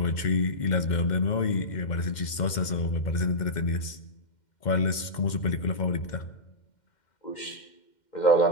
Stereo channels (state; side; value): late; right; 2.1 ms